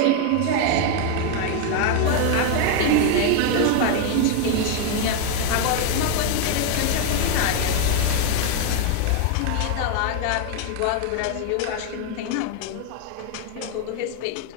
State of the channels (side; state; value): both; different; correlation 0.01